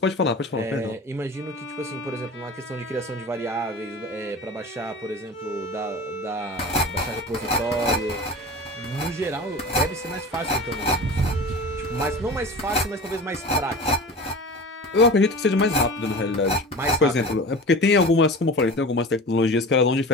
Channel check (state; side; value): normal; both; correlation 0.34